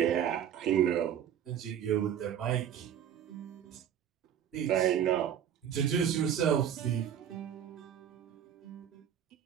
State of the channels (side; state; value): left; quieter; 9.4 dB